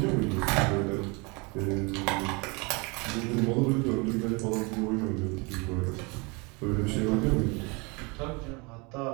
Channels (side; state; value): left; quieter; 28.9 dB